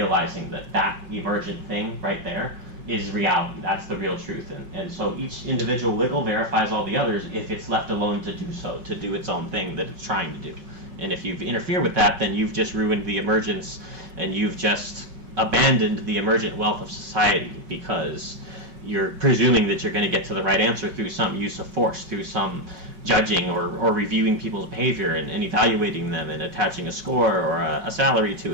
that emergent thing right there is reality. That's the real truth. And so each individual wiggle verifies all the others if it's left alone to do so, to do its own thing that it's trying to do. And if you interfere with that, then you've just ruined the emergence, and you've just abandoned the emergent wealth of society, because you're presuming that you're going to get to the right answer through some use of force, through some judging or reviewing people's behavior and evaluating them and attaching a score or a salary to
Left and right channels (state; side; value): late; left; 5.4 ms